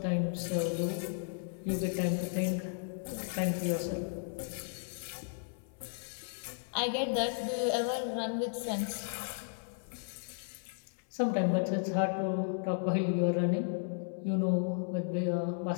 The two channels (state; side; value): silent; right; 55 dB below the other